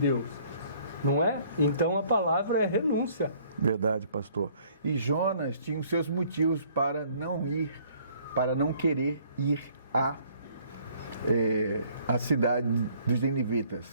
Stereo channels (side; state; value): both; inverted; correlation -0.60